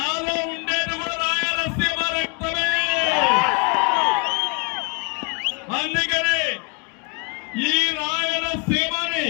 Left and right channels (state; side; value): quieter; right; 31.5 dB